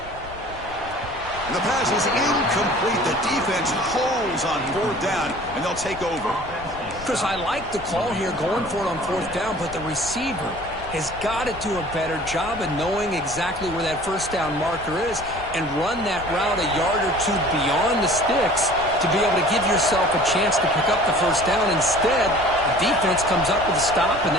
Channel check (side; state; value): left; noise; rumble, 17 dB below the sound